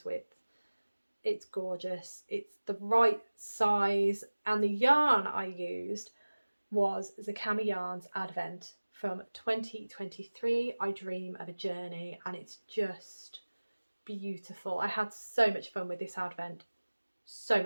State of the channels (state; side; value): inverted; both; correlation -1.00